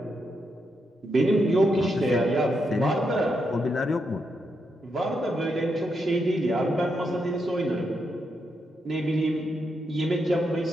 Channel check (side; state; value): both; normal; correlation 0.82